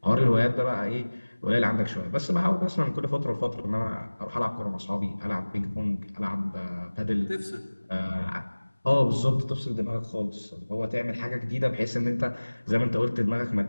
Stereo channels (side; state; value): both; inverted; correlation -1.00